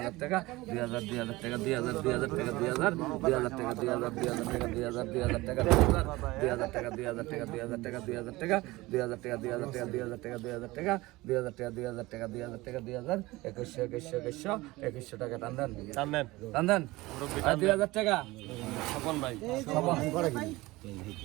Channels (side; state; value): left; quieter; 20.2 dB